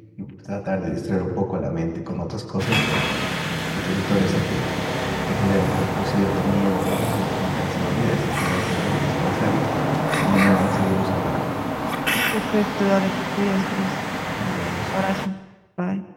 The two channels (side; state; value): both; identical; correlation 1.00